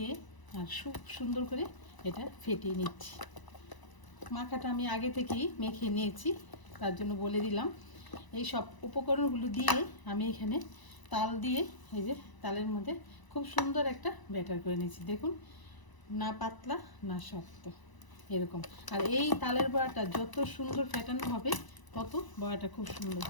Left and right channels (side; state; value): right; late; 1.0 ms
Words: আর খুব সুন্দর করে এটা ফেটিয়ে নিচ্ছি। মাখাটা আমি আগে থেকেই মেখে নিয়েছি, তার জন্য বলে দিলাম। এই সব উপকরণগুলো দিয়ে আমি এখানে তাল দিয়ে, এই যে তালের মধ্যে খুব সুন্দর একটা ব্যাটার করে নিয়েছি। দেখুন, না পাতলা না শক্ত, এরকম। আর এই তালের বড়াটা যত সুন্দর ফেটানো হবে তত বড়াটা খুব সুন্দর